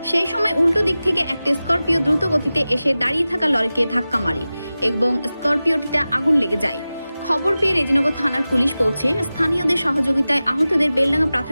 সেই সময় উল্টো দিক থেকে একটি স্করপিও দ্রুত গতিতে এসে দাঁড়িয়ে থাকা লরিকে ধাক্কা মারে এবং স্করপিওটিতে আগুন লেগে যায়। খবর পেয়ে রেজিনগর থানার পুলিশ পৌঁছে স্থানীয়দের সহযোগিতায় আহতদের বেলডাঙ্গা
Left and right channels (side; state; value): both; inverted; correlation -0.96